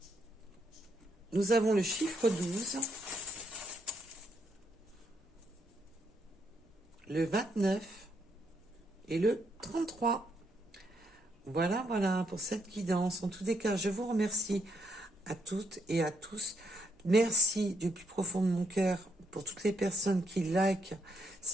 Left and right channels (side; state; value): both; normal; correlation 0.77